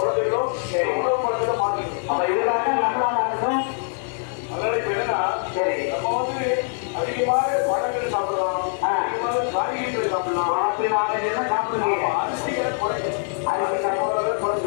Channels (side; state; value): right; silent; 63 dB below the other